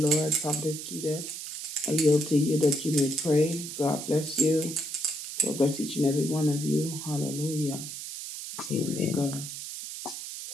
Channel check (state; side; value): noise; right; hiss, 8 dB below the sound